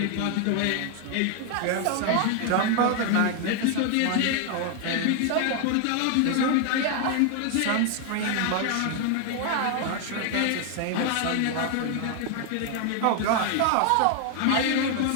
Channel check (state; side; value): different; both; correlation 0.00